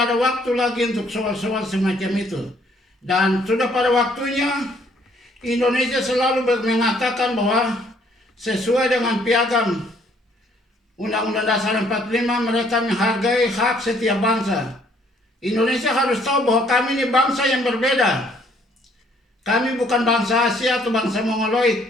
ada waktu lagi untuk soal-soal semacam itu. Dan sudah pada waktunya Indonesia selalu mengatakan bahwa sesuai dengan piagam Undang-Undang Dasar 45 mereka menghargai hak setiap bangsa. Indonesia harus tahu bahwa kami ini bangsa yang berbeda. Kami bukan bangsa Asia atau bangsa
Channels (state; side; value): normal; both; correlation 0.64